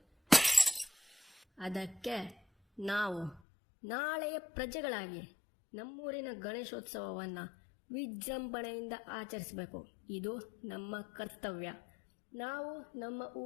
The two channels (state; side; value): drops out; right; at 3.4 s